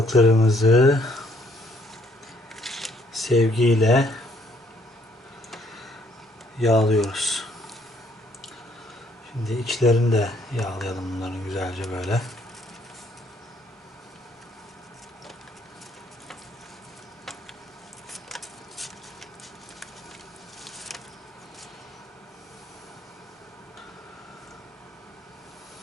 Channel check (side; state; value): both; normal; correlation 0.66